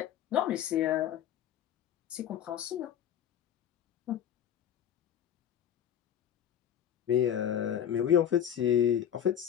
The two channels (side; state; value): right; quieter; 9.6 dB